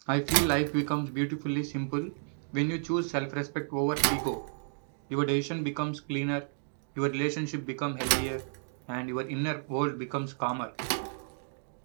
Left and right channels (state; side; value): silent; left; digital silence